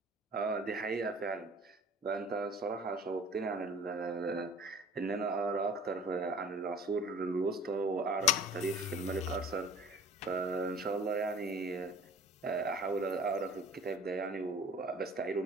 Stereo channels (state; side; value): normal; both; correlation 0.47